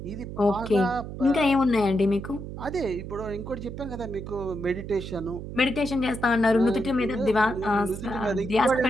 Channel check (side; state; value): right; noise; hum, 9 dB below the sound